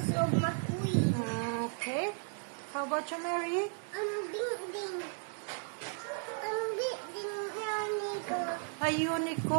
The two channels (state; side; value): silent; left; 55 dB below the other